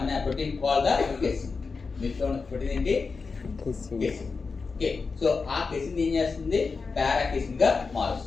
protein called the casein. Milk protein ఏంటి? casein. Okay, so ఆ casein ఏం చేస్తుంది? para-casein గా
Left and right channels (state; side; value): quieter; right; 4.6 dB